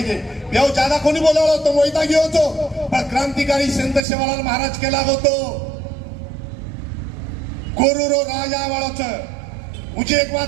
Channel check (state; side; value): drops out; left; at 4.0 s